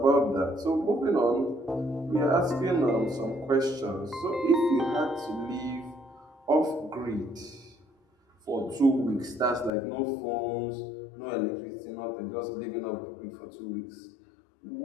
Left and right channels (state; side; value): drops out; right; at 9.7 s